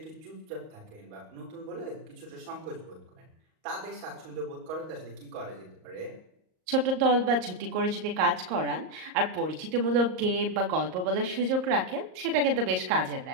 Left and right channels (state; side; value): late; left; 38 ms